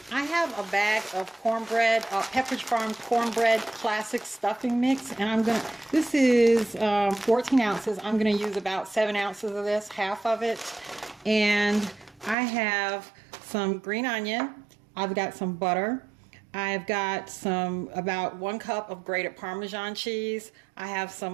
I have a bag of cornbread, Pepperidge Farm cornbread classic stuffing mix, and this is 14 ounces. I'm going to use about 7 ounces of this, half of it. And I have some green onion. I've got some butter. I've got about 1 cup of grated Parmesan cheese. I have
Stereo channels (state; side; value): drops out; left; at 12.4 s